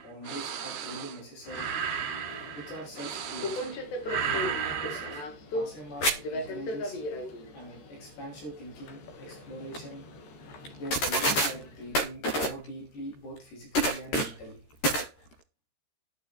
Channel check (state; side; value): late; right; 13 ms